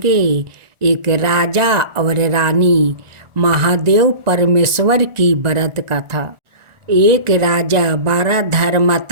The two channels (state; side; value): late; left; 1.4 ms